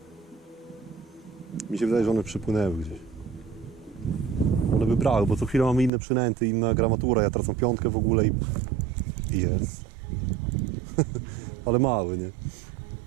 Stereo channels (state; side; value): drops out; left; at 5.9 s